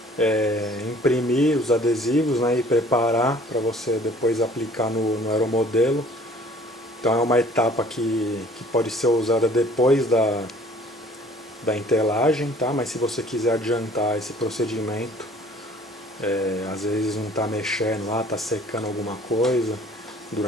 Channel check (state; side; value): normal; both; correlation 0.53